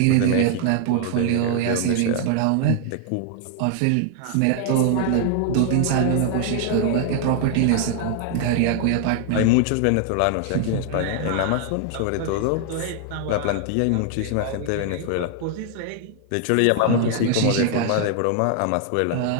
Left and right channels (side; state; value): both; different; correlation 0.00